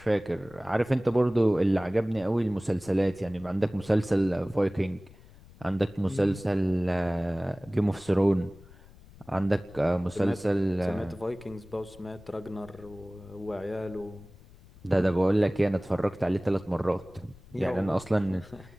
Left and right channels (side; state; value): left; noise; rumble, 22 dB below the sound